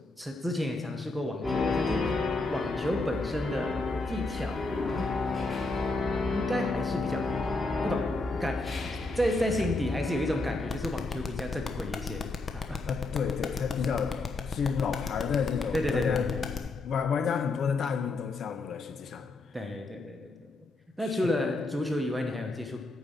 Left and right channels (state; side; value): quieter; right; 3.1 dB